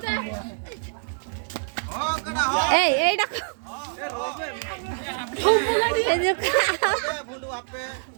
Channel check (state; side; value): silent; left; digital silence